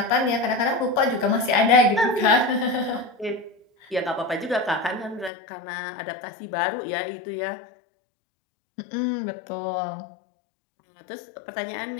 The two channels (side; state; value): right; drops out; at 5.3 s